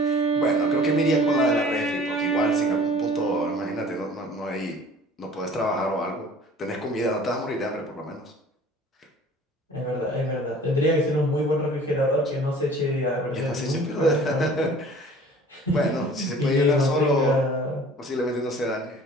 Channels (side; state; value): both; normal; correlation 0.48